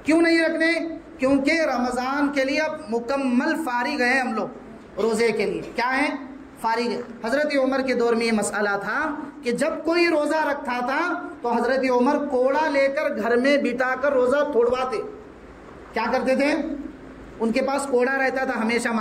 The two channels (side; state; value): both; identical; correlation 1.00